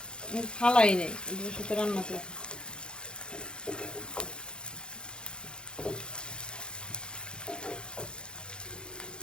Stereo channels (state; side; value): late; right; 0.050 ms